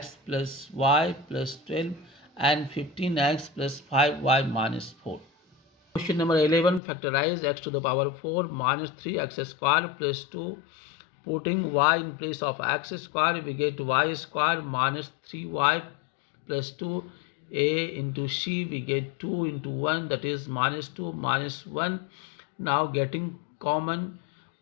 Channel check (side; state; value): right; drops out; at 6.8 s